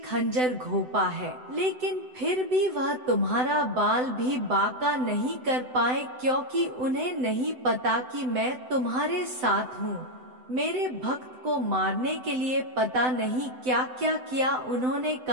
घोंपा है, लेकिन फिर भी वह तुम्हारा बाल भी बांका नहीं कर पाए, क्योंकि उन्हें नहीं पता कि मैं तुम्हारे साथ हूँ। मेरे भक्त को मारने के लिए पता नहीं क्या क्या किया उन्होंने,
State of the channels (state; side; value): late; left; 7.9 ms